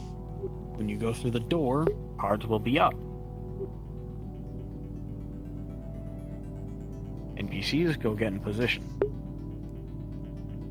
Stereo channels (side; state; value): both; identical; correlation 1.00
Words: when you go through the door, cards will be up. NPCs go get in position.